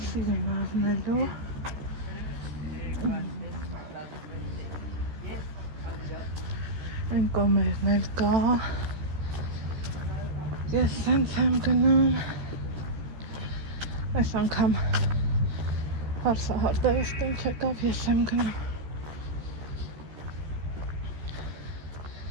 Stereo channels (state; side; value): late; left; 13 ms